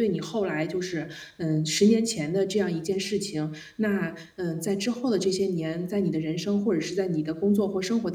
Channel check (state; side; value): identical; both; correlation 1.00